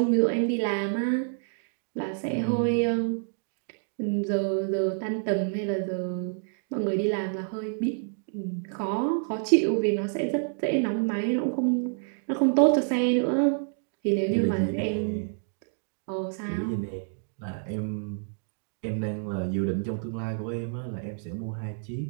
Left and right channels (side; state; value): left; silent; digital silence